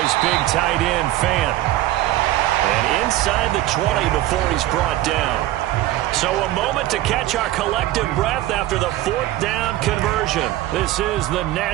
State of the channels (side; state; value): left; quieter; 15.2 dB